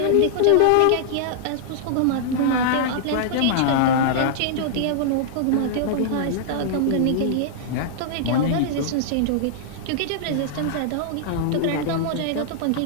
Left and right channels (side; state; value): both; different; correlation -0.01